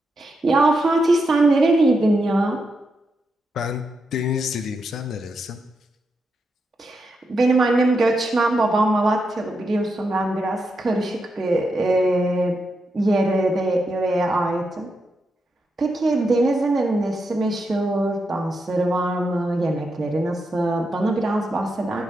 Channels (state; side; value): normal; both; correlation 0.85